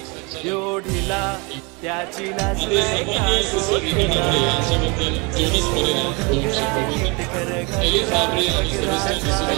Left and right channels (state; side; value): quieter; left; 29.3 dB